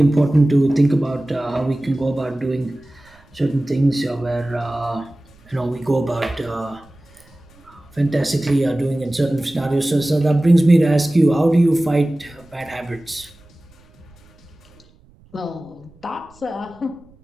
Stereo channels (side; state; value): right; noise; rumble, 28 dB below the sound